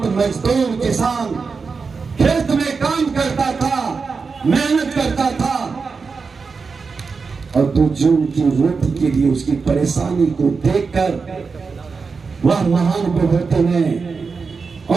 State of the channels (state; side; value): quieter; left; 4.9 dB